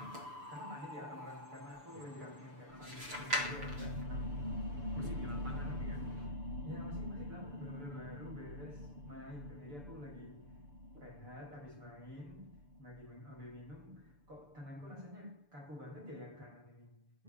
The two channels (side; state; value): left; late; 6.9 ms